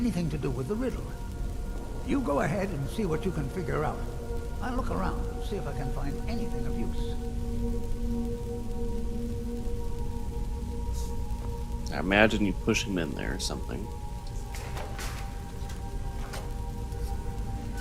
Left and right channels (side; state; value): both; identical; correlation 1.00